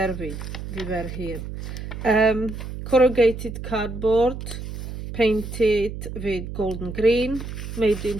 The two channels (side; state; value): right; noise; hum, 8 dB below the sound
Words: we? We were here. Corrugated cardboard, painted with golden green, made